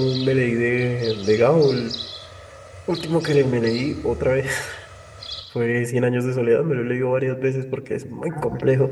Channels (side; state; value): both; identical; correlation 1.00